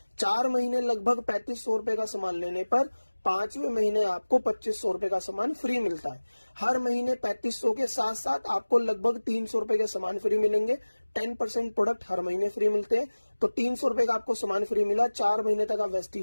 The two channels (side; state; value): both; inverted; correlation -1.00